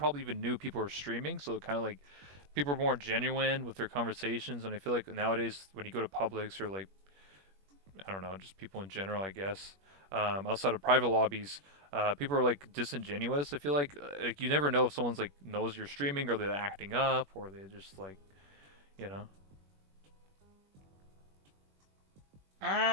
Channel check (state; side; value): late; left; 21 ms